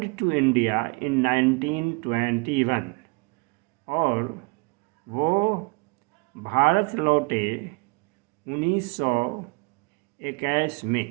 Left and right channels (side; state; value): left; quieter; 30.9 dB